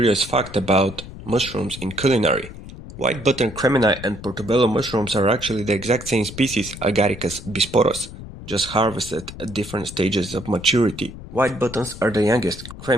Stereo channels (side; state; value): left; noise; rumble, 13 dB below the sound